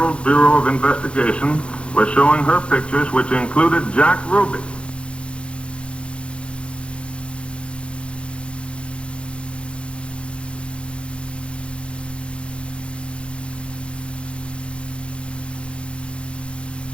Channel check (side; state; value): right; late; 0.058 ms